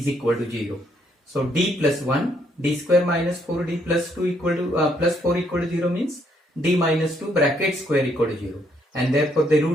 equal to 0. So d plus 1, d square minus 4d plus 2 equal to plus 4 equal to 0 means d minus 2 bracket square equal to 0. And therefore the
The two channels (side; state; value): both; normal; correlation 0.71